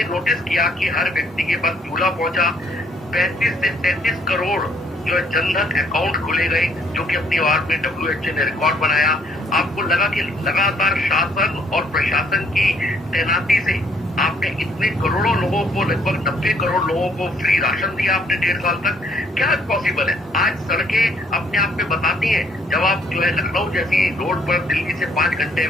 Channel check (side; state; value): both; normal; correlation 0.65